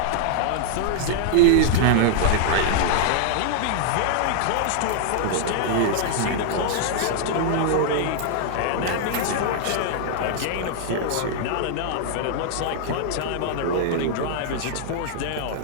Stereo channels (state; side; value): different; both; correlation -0.01